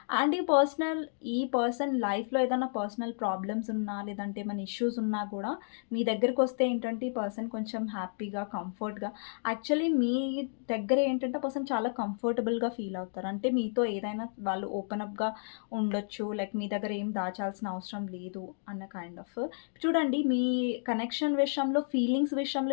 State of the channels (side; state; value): right; silent; digital silence